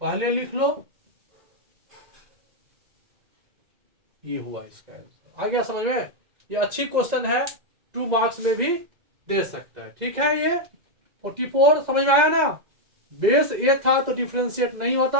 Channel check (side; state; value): left; late; 2.0 ms